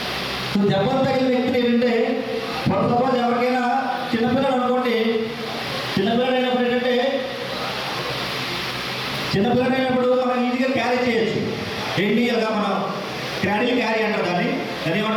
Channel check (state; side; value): identical; both; correlation 1.00